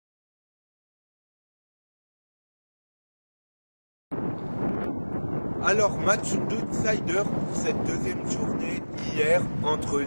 Alors, match d'outsider pour cette deuxième journée hier entre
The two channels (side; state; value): both; inverted; correlation -1.00